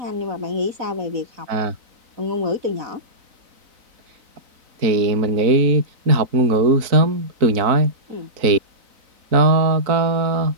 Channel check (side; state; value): left; late; 3.9 ms